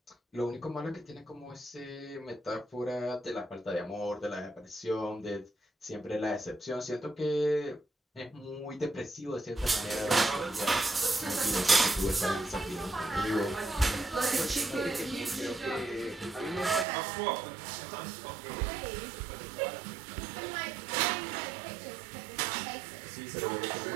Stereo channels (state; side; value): drops out; left; at 16.9 s